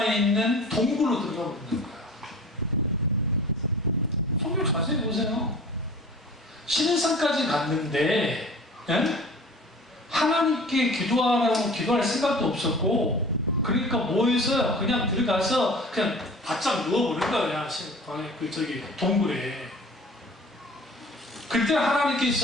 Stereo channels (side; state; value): both; normal; correlation 0.43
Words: 있는 동굴로 들어가고 있는 거예요. 성경 자세히 보세요. 신의 산까지 갔는데, 예? 하나님께 기도하라고 기도할 생각도 없었고, 그러니까 뭐 했어요? 그냥 들어가서 그냥 바짝 누워버린 거예요. 동굴에. 그때